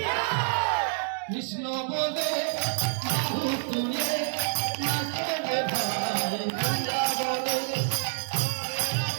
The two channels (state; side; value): silent; left; digital silence